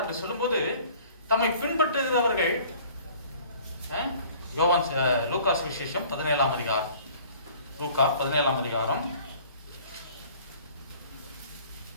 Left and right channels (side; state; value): both; inverted; correlation -0.50